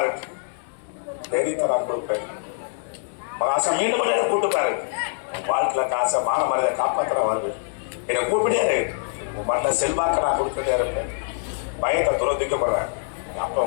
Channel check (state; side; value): silent; right; digital silence